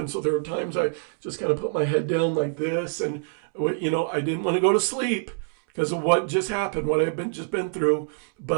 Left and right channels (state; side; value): silent; left; 61 dB below the other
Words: So there were times I just kind of put my head down like this. And, I didn't want to go to sleep because of what just happened, what I had just been through.